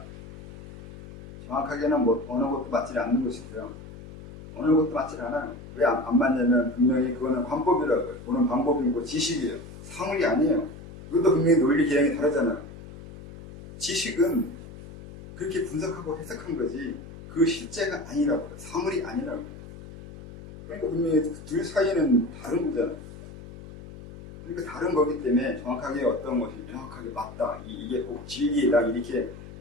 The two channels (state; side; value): noise; left; hum, 15 dB below the sound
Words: 정확하게는 뭐 어느 것도 맞지 않는 것이고요. 어느 것도 맞지 않아요. 왜 안 맞냐면 분명히 그거는 관법이라고요. 보는 방법이고 지식이에요. 사물이 아니에요. 이것도 분명히 논리 개념이 다르잖아요. 지식은 그렇게 분석하고 해석한 거지 그 실제가 아니라고요. 사물이 아니라고요. 그러니까 분명히 둘 사이는 다른 거잖아요. 그러니까 다른 거기 때문에 정확하게 어떤 것이 명확하게 맞다. 이게 꼭 진리다. 이렇게